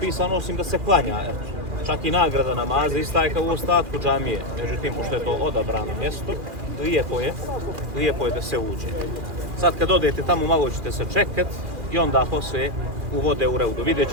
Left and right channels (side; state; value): left; late; 2.4 ms